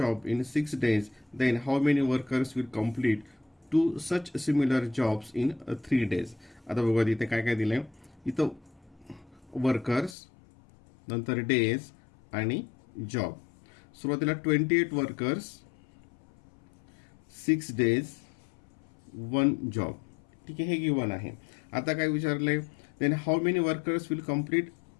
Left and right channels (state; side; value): drops out; right; at 10.2 s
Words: in 6 days, then how many workers will complete two such similar jobs in 3 days. आता बघा इथे काय काय दिलंय. इथं वर्कर्स, नंतर डेज आणि जॉब. सुरुवातीला 28 वर्कर्स, 6 days, 1 जॉब. ठीक आहे, हे गिवन आहे. आता काय विचारलंय, then how many workers will complete